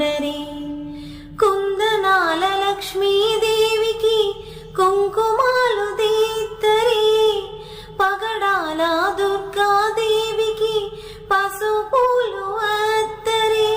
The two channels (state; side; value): identical; both; correlation 1.00